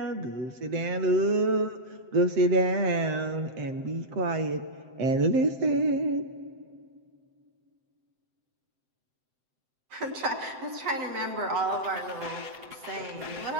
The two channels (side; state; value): left; late; 7.7 ms